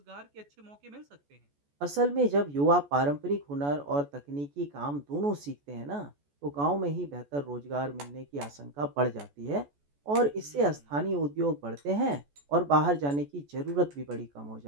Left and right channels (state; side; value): late; left; 14 ms